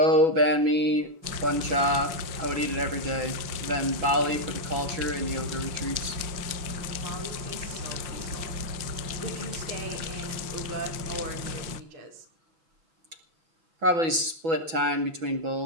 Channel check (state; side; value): late; left; 6.1 ms